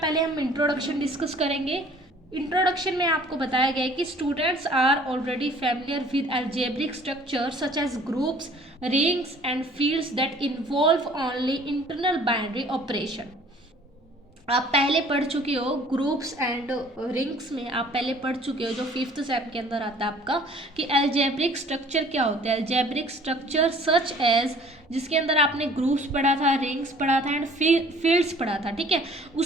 हम इंट्रोडक्शन डिस्कस करेंगे। इंट्रोडक्शन में आपको बताया गया है कि students are already familiar with algebraic structure such as groups, rings and fields that involve only internal binary operation. आप पहले पढ़ चुके हो ग्रुप्स एंड रिंग्स में, आप पहले पढ़ चुके हो, जो 5th सेम के अंदर आता है आपका, कि अलजेब्रिक स्ट्रक्चर क्या होता है। अलजेब्रिक स्ट्रक्चर सच एज, जिसके अंदर आपने ग्रुप्स पढ़ा था, रिंग्स पढ़ा था एंड फील्ड्स पढ़ा था, ठीक है।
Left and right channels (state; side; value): normal; both; correlation 0.53